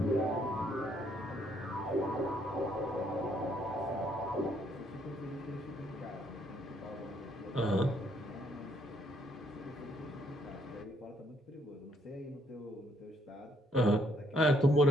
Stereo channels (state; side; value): normal; both; correlation 0.70